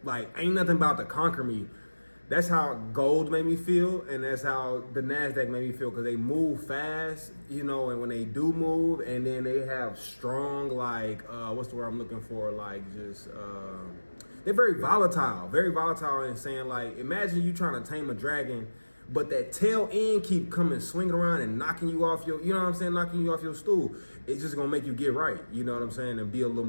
like, ain't nothing about to conquer me. That's how gold made me feel, and that's how the NASDAQ made me feel, because they move fast, you know, and when they do move, and then they have strong, like, what's the word I'm looking for? Like, just, they're very volatile in saying, like, imagine you trying to tame a dragon, but that tail end keep coming, swinging around and knocking you off your, you know what I'm saying, knocking you off your stool. It's just gonna make you get right, you know what I'm saying, and be a little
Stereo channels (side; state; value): both; inverted; correlation -1.00